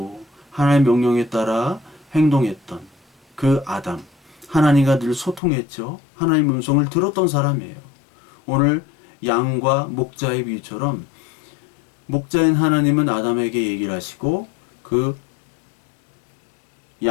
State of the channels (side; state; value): right; drops out; at 5.4 s